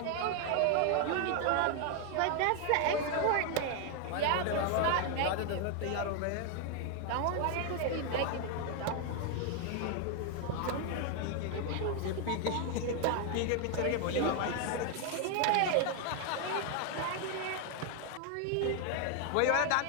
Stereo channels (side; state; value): both; different; correlation 0.01